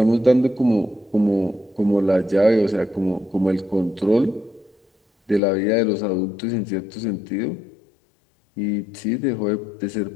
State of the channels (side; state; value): right; drops out; at 5.4 s